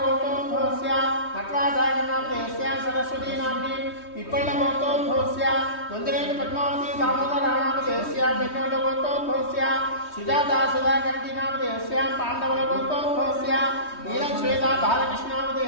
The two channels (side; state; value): right; late; 3.2 ms